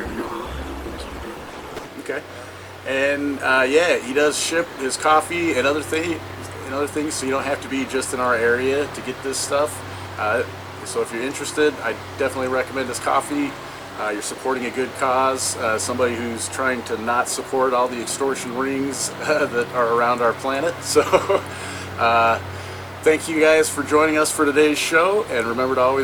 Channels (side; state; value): both; identical; correlation 1.00